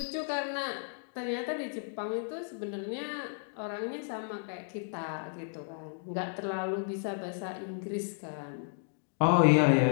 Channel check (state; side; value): silent; right; digital silence